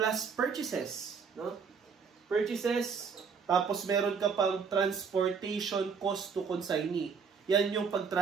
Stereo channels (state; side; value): quieter; left; 5.9 dB